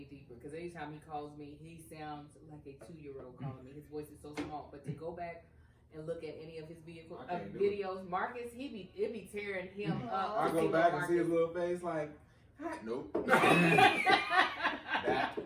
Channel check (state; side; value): identical; both; correlation 1.00